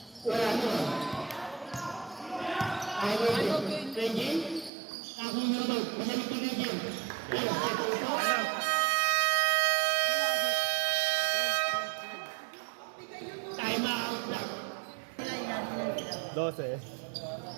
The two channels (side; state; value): left; drops out; at 4.7 s